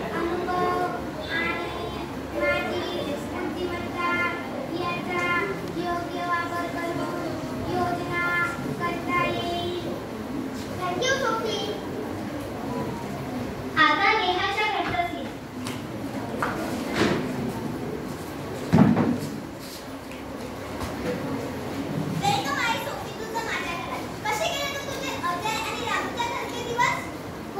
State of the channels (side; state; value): both; identical; correlation 1.00